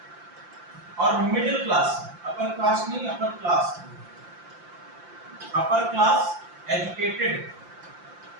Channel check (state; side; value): late; left; 5.8 ms